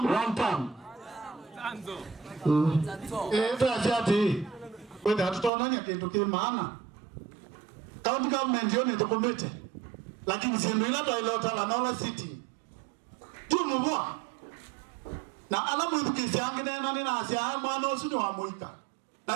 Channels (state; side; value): drops out; left; at 5.5 s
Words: Tatiati whether hatutonanya kitu kimaana county government yoni tukomete lakini sindu ila toilota la nola city tu mubwa na alamu idukisi angine na nina asia mwana osu ni wa muika